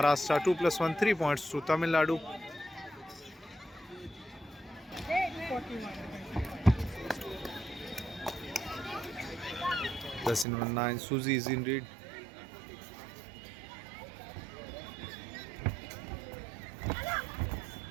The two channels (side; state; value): left; drops out; at 10.5 s